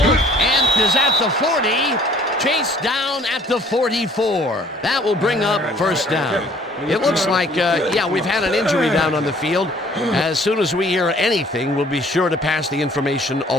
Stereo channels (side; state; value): both; normal; correlation 0.56